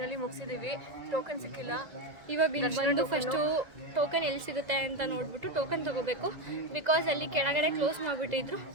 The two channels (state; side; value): late; left; 2.0 ms